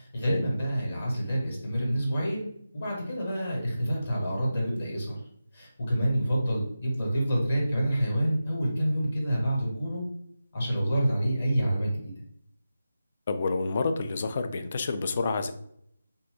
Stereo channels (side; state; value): both; inverted; correlation -0.91